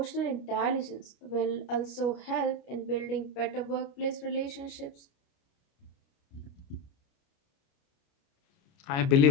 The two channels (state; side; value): late; right; 29 ms